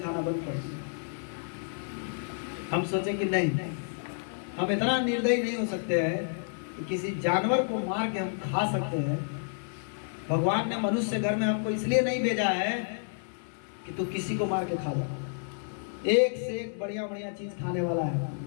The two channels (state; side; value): silent; right; 58 dB below the other